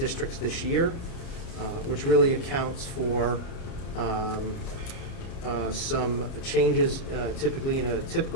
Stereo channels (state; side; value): late; right; 29 ms